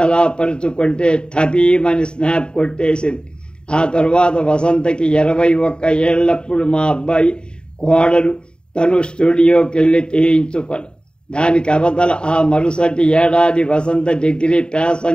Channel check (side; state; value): right; late; 0.050 ms